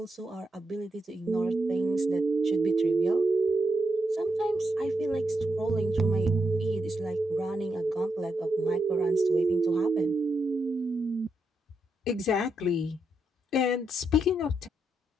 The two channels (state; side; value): normal; both; correlation 0.83